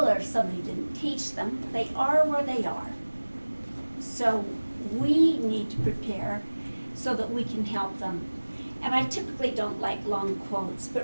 or somebody didn't teach them. They are where they are. So we need to prepare so that we can help them. And I typically don't like long quotes,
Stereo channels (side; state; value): both; inverted; correlation -1.00